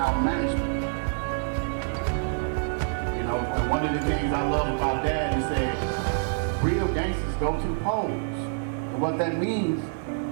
management. You know, and one of the things I love about Dad is that real gangsters go to polls. And what that means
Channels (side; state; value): left; silent; digital silence